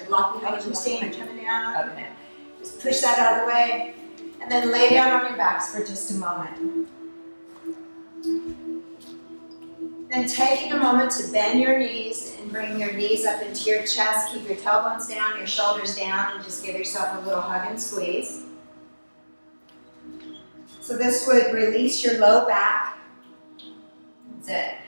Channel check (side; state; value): both; inverted; correlation -1.00